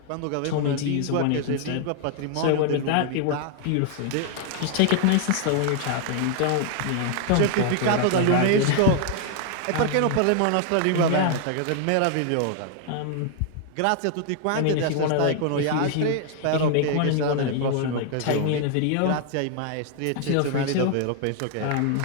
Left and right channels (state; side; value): different; both; correlation 0.00